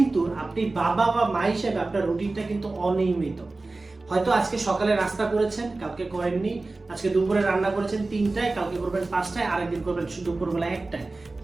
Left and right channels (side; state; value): left; quieter; 3.3 dB